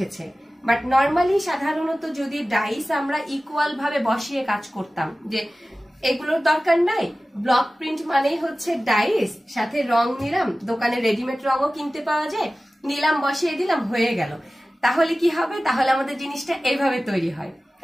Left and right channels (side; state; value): both; normal; correlation 0.96